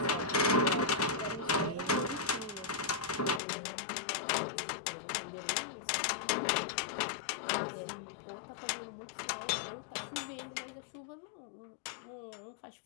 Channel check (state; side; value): drops out; right; at 3.4 s